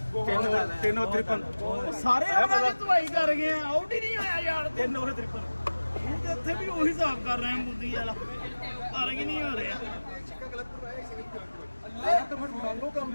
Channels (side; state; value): both; inverted; correlation -1.00